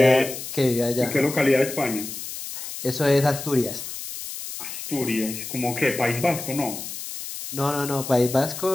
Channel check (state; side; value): noise; left; hiss, 9 dB below the sound